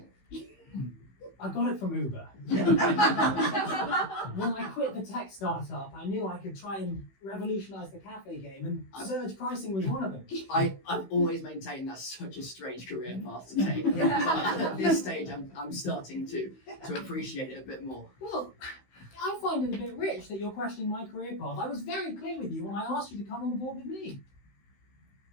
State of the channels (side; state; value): right; late; 16 ms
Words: I got it from Uber. When I quit the a tech startup, I knew I could try and revolutionize the cafe game, and surge pricing was one of them. I've always maintained that's such a strange career path to take. But at this stage, I'm starting to appreciate it a bit more. Well, I find it a bit rich that you're questioning my career path. I was very clear with you when I asked you to come on board with me.